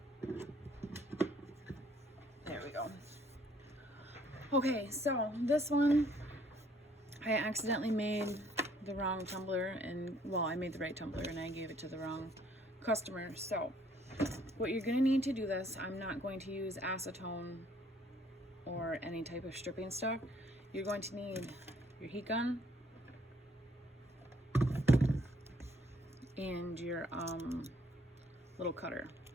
There we go. Okay, so this one I accidentally made the wrong tumbler, and well, I made the right tumbler and I gave it to the wrong customer. So what you're going to need to do this, I'm not going to use acetone or any type of stripping stuff. You're going to need your heat gun and your little cutter.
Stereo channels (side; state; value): both; normal; correlation 0.63